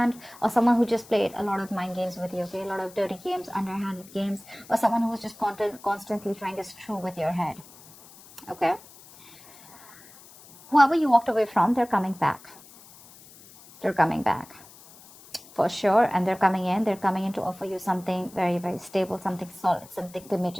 or someone who just played a lot of mind games with you, okay? A lot of dirty games, underhanded games, or someone who was just constantly trying to screw with your head, okay? Whoever you walked away from, they're coming back. They're coming back. For sure, and they're coming in to offer you something very, very stable, something solid, something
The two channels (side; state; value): left; noise; hiss, 22 dB below the sound